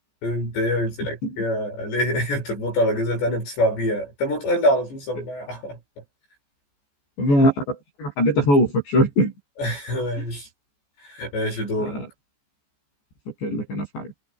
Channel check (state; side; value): late; right; 14 ms